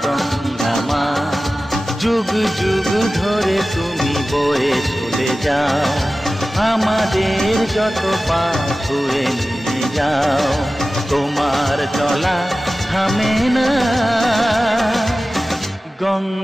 গঙ্গা মা, যুগ যুগ ধরে তুমি বয়ে চলে যাও, আমাদের যত পাপ ধুয়ে নিয়ে যাও। তোমার চলা থামে না।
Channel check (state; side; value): normal; both; correlation 0.96